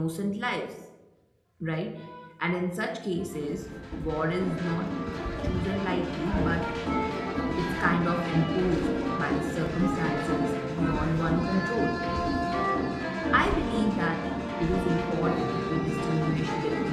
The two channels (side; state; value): both; identical; correlation 1.00